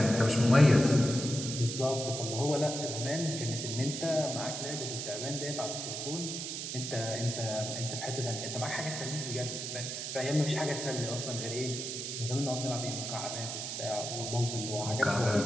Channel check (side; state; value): right; noise; hiss, 5 dB below the sound